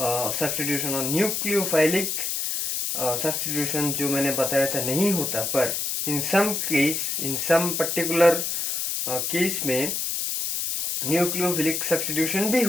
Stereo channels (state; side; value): noise; left; hiss, 1 dB below the sound